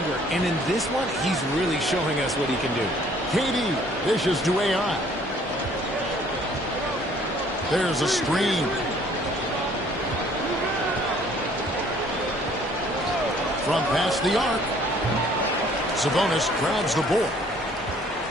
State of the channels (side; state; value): both; normal; correlation 0.58